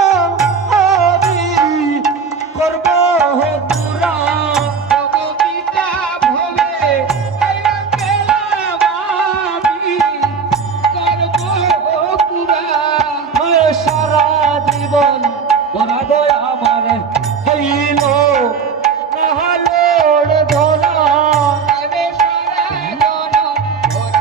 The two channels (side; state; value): left; quieter; 5.7 dB